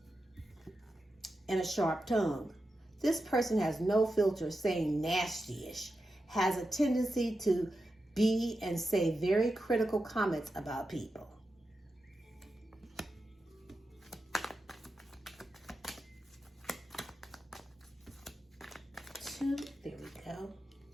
and a sharp tongue. This person has no filter, saying nasty-ish, has a tendency to be and say very critical comments about people. There we go.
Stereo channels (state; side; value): normal; both; correlation 0.89